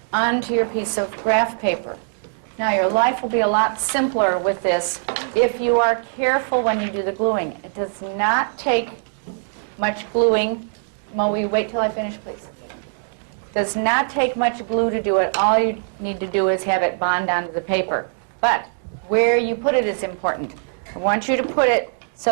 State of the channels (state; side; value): silent; left; digital silence